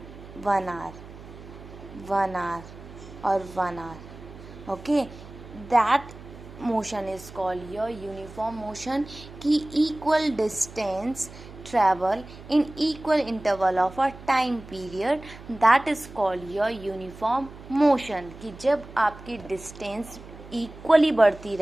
1 hour, 1 hour और 1 hour. Okay, that motion is called your uniform motion. कि equal distance travel in equal interval of a time period, that is called your uniform motion. कि जब आपकी distance equally बढ़ती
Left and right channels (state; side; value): noise; right; hum, 17 dB below the sound